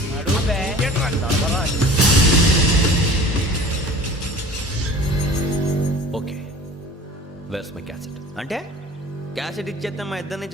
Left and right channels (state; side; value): normal; both; correlation 0.43